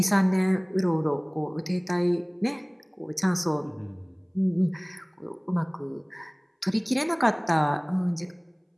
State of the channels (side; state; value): both; identical; correlation 1.00